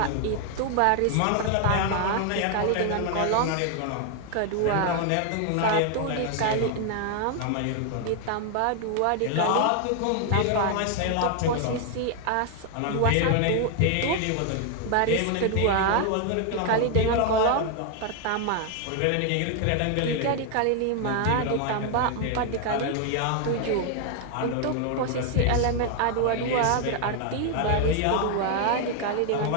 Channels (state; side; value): different; both; correlation 0.00